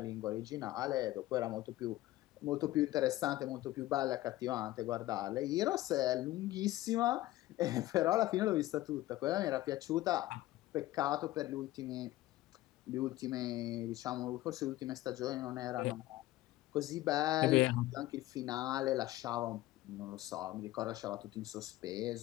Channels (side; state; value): right; quieter; 16.5 dB